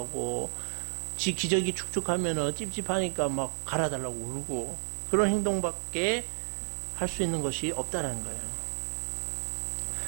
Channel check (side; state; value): left; silent; 57 dB below the other